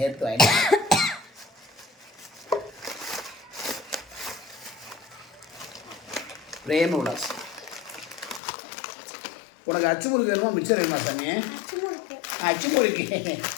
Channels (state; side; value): drops out; right; at 8.4 s